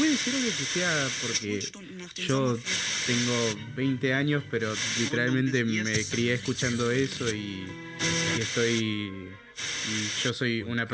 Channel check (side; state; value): both; identical; correlation 1.00